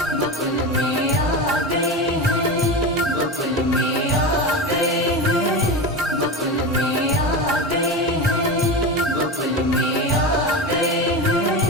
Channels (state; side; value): normal; both; correlation 0.23